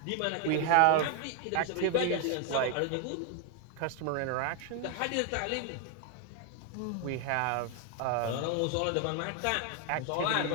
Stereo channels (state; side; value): different; both; correlation 0.01